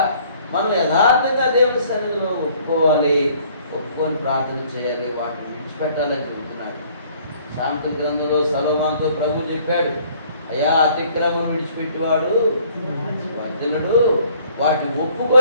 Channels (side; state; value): both; inverted; correlation -0.58